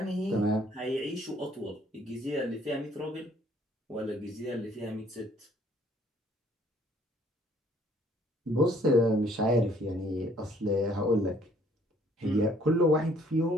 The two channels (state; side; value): normal; both; correlation 0.61